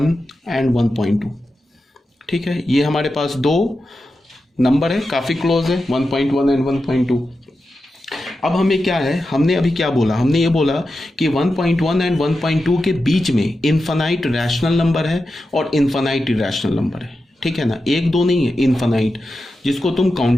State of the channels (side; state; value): both; normal; correlation 0.90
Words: एंड 1.2, ठीक है, ये हमारे पास दो नंबर है, काफ़ी क्लोज है, 1.1 एंड 1.2। अब हमें क्या है, हमने अभी क्या बोला, हमने ये बोला कि 1.1 एंड 1.2 के बीच में इनफाइनाइट रैशनल नंबर है और इनफाइनाइट इरैशनल नंबर है। ठीक है ना, एक दो नहीं है, इनफाइनाइट, जिसको तुम